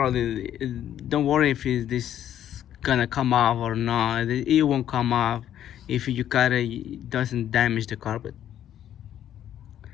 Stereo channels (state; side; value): quieter; right; 10.9 dB